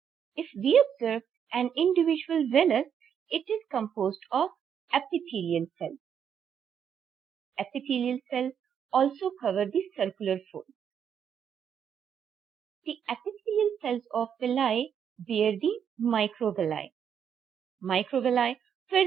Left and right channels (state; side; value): quieter; left; 8.2 dB